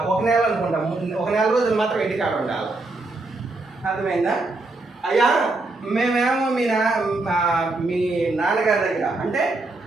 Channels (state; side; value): quieter; left; 3.1 dB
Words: 1 నెల అనుకుంటా, 1 నెల రోజులు మాత్రం ఇంటికాడ ఉండాలి. అర్థమైందా? అయ్యా మేమేమో మీ నాన్నగారి దగ్గర అంటే